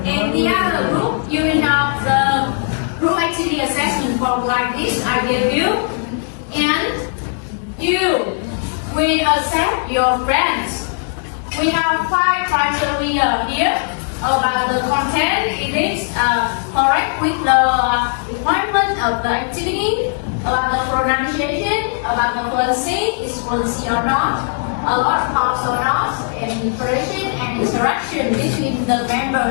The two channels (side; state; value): right; silent; 67 dB below the other